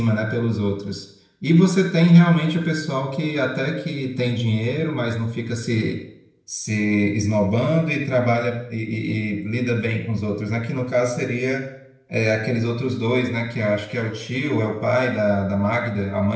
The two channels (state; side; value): identical; both; correlation 1.00